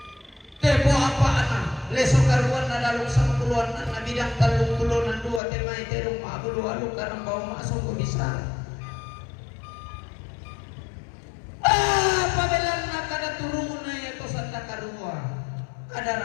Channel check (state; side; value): drops out; right; at 5.4 s